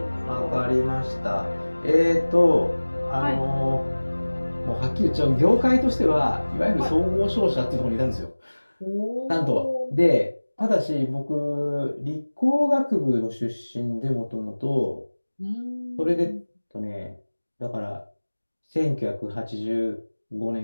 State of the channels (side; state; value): both; inverted; correlation -1.00